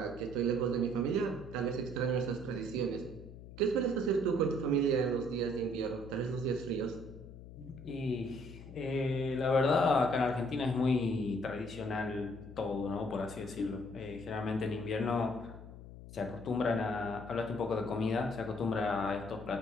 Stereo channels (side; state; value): left; noise; hum, 15 dB below the sound